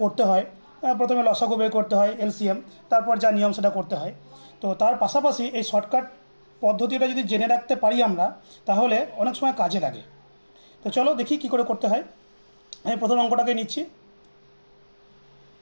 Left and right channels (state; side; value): inverted; both; correlation -1.00